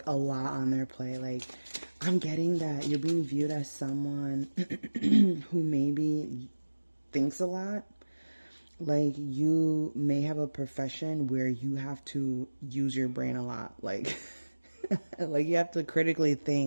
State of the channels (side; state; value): both; inverted; correlation -1.00